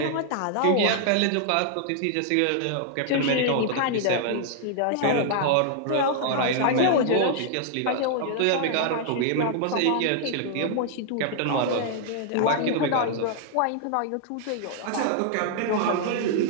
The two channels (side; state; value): both; different; correlation -0.01